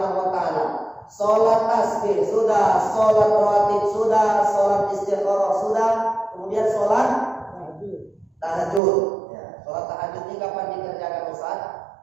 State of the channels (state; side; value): drops out; left; at 8.8 s